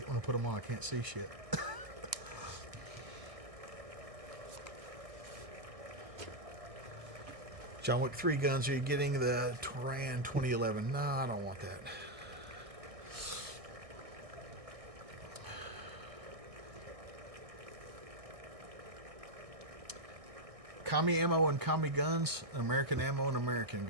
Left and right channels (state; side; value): late; left; 1.6 ms